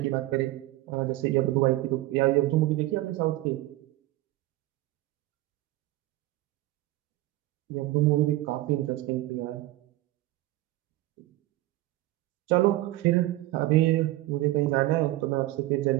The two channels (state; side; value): quieter; left; 17.2 dB